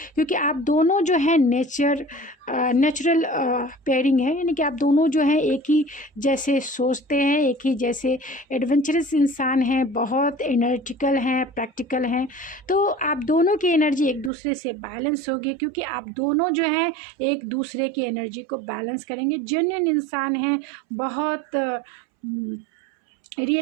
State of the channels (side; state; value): left; drops out; at 14.3 s